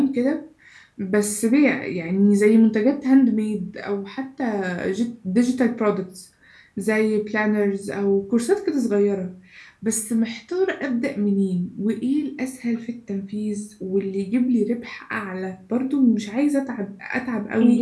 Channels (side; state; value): both; identical; correlation 1.00